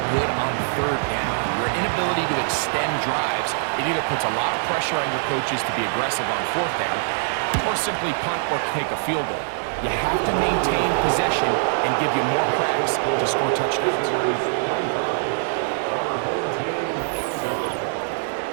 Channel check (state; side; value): silent; left; digital silence